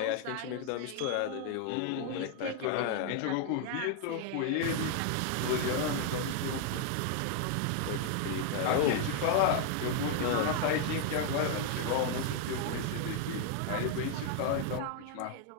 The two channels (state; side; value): different; both; correlation 0.00